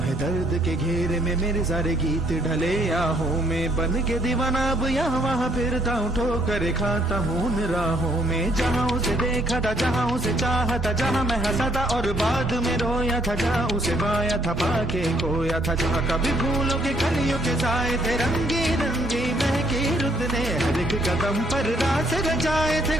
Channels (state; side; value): normal; both; correlation 0.67